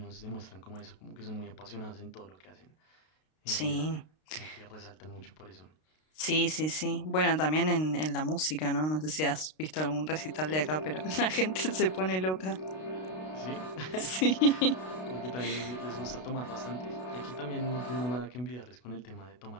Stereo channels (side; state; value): right; late; 32 ms